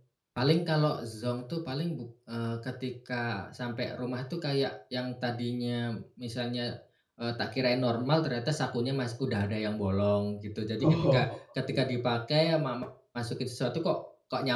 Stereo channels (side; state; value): both; identical; correlation 1.00